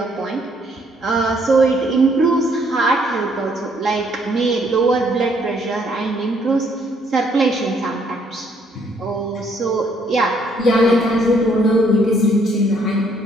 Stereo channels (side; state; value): both; normal; correlation 0.68